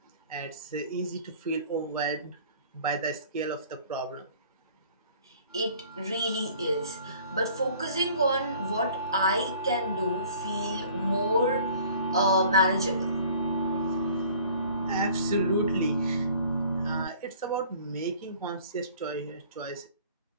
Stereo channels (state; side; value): inverted; both; correlation -0.52